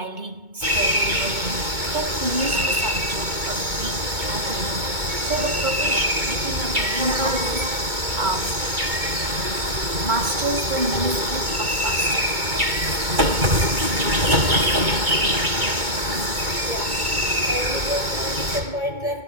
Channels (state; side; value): late; left; 2.2 ms